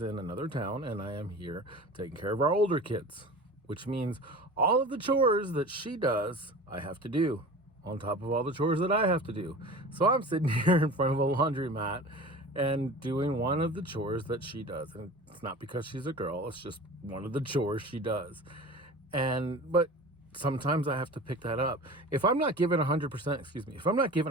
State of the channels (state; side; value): normal; both; correlation 0.37